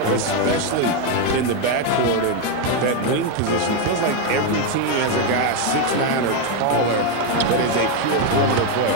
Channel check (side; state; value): both; different; correlation 0.02